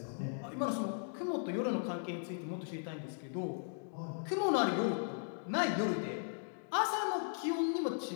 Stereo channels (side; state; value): right; silent; digital silence